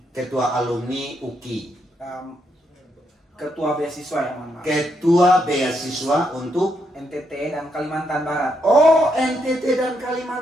alumni UKI. ketua beasiswa ya, mohon maaf. Ketua beasiswa untuk NTT dan Kalimantan Barat. Oh, NTT dan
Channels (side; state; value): both; normal; correlation 0.79